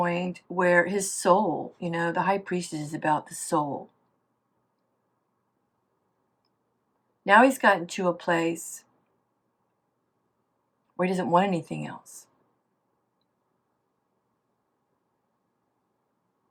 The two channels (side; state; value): both; identical; correlation 1.00